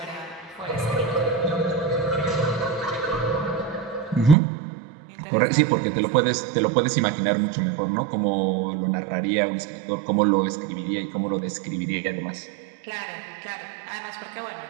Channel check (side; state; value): left; drops out; at 4.4 s